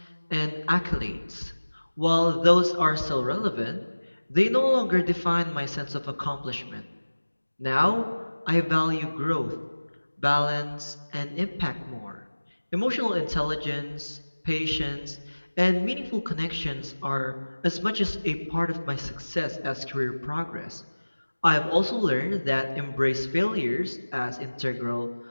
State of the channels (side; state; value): both; inverted; correlation -1.00